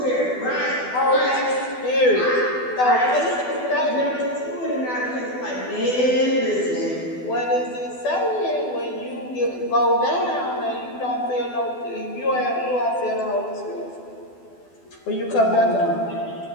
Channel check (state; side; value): late; right; 12 ms